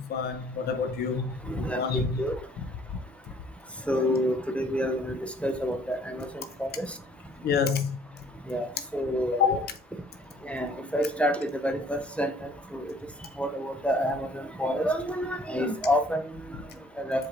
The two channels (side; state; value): both; normal; correlation 0.57